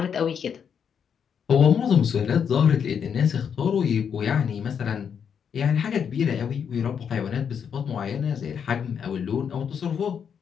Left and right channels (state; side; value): quieter; right; 7.4 dB